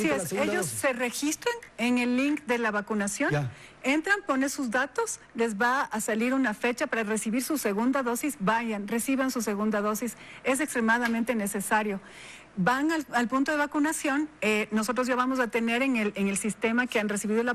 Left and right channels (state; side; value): identical; both; correlation 1.00